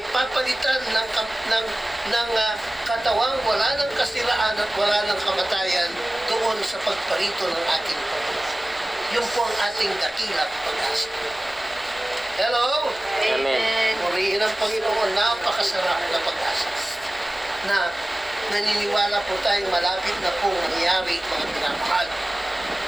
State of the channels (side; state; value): both; normal; correlation 0.97